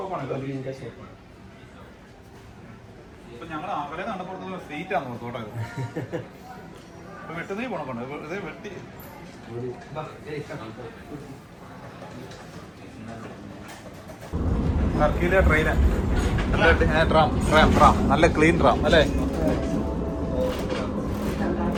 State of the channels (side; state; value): both; identical; correlation 1.00